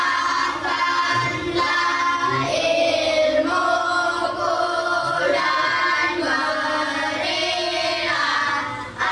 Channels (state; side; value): identical; both; correlation 1.00